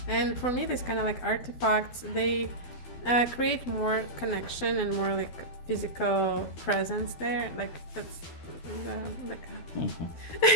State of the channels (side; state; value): right; late; 12 ms